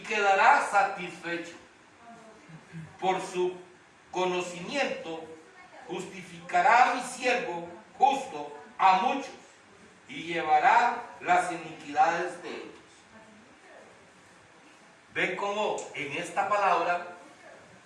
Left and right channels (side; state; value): both; identical; correlation 1.00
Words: quedará satisfecho. Por su conocimiento justificará a mi siervo justo a muchos y llevará las iniquidades de ellos. Ven cómo en esta palabra